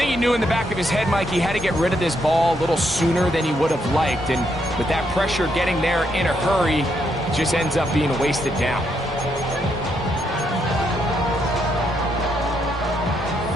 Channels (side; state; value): both; normal; correlation 0.77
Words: he knew in the back of his head, Mike, he had to get rid of this ball a little sooner than he would have liked. And with that pressure getting there in a hurry, it just ends up being a wasted down.